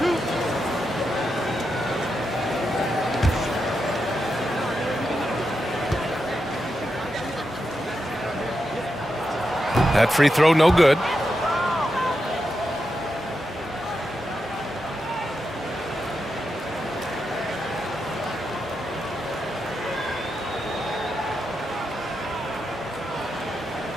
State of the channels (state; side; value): normal; both; correlation 0.86